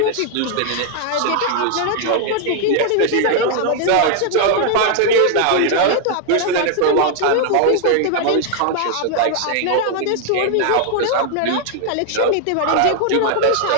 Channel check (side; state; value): both; different; correlation 0.00